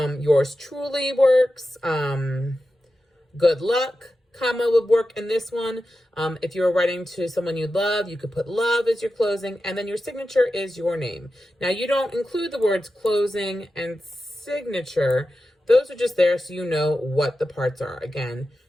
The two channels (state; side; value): normal; both; correlation 0.92